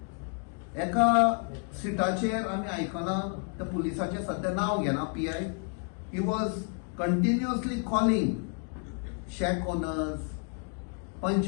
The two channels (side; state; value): right; quieter; 38.0 dB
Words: एका सिटाचेर आमी आयकना त्या पुलिसाचें सध्या नांव घेना, PI. He was continuously calling shake owners,